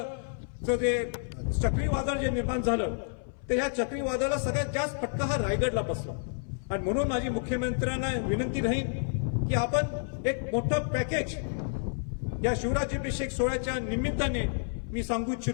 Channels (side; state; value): right; silent; 58 dB below the other